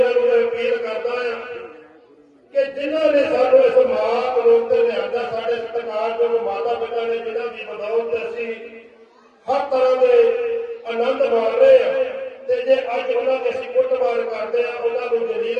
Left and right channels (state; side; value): identical; both; correlation 1.00